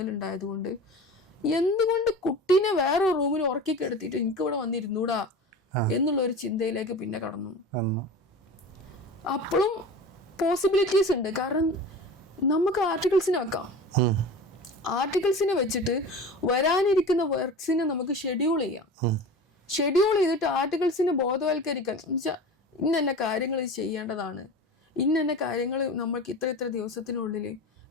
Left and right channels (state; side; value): normal; both; correlation 0.34